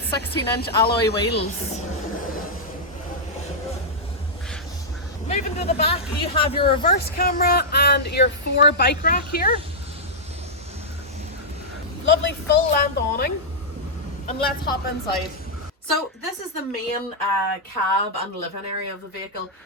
alloy wheels. Moving to the back, you have your reverse camera and your 4 bike rack here. Lovely full length awning, and let's hop inside. So this is the main cab and living area of the vehicle.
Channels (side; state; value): both; normal; correlation -0.08